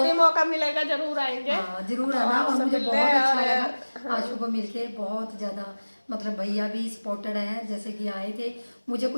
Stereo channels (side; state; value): both; inverted; correlation -1.00